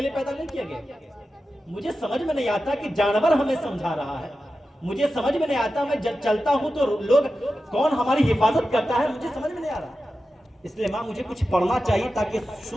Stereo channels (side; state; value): both; normal; correlation 0.92